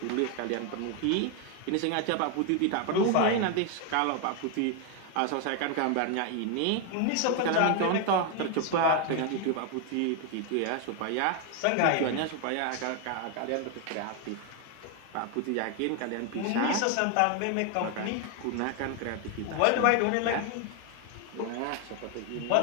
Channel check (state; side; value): different; both; correlation 0.00